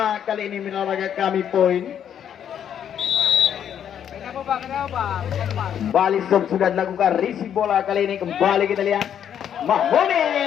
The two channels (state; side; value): quieter; right; 9.1 dB